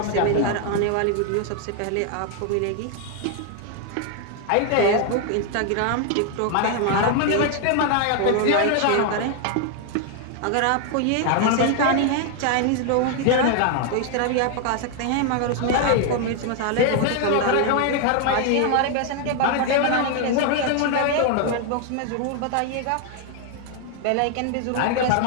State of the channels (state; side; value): different; both; correlation 0.00